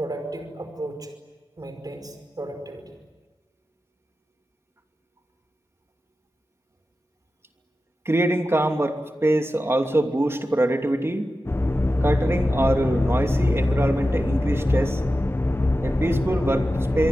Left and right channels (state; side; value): normal; both; correlation 0.93